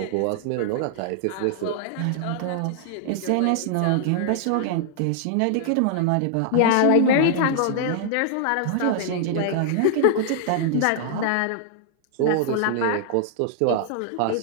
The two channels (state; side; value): different; both; correlation -0.01